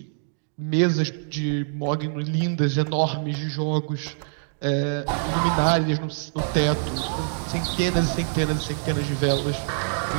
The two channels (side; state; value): left; silent; digital silence